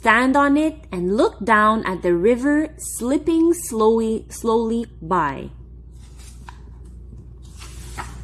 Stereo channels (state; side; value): identical; both; correlation 1.00